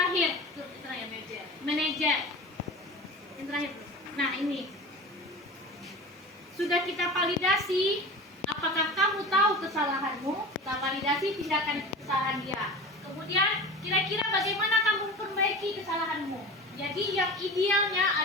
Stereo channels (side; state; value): both; normal; correlation 0.33